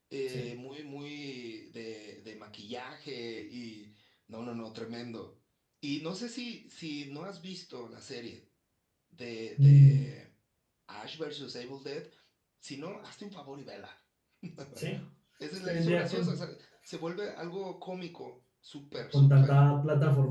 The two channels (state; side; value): identical; both; correlation 1.00